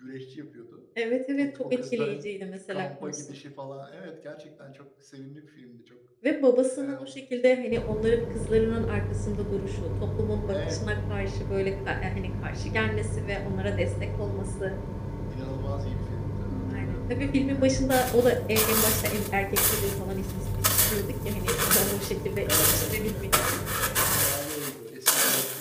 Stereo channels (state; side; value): identical; both; correlation 1.00